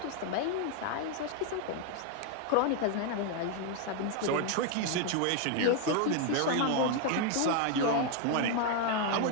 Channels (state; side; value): different; both; correlation 0.00